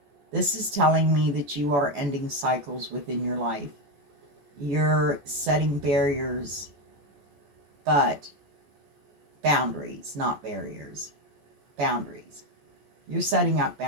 This is telling me that you are ending cycles within your life. You're setting barriers, but boundaries, not barriers. Boundaries. You're setting up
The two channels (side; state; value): left; late; 14 ms